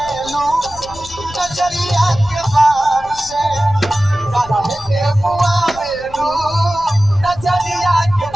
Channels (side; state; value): left; noise; rumble, 17 dB below the sound